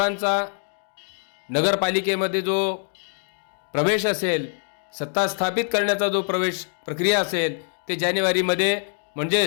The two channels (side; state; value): right; silent; 61 dB below the other